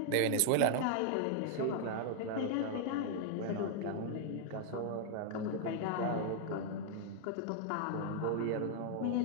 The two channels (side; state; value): both; different; correlation 0.00